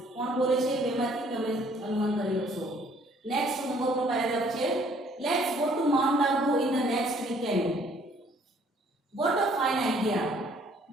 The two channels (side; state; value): both; normal; correlation 0.60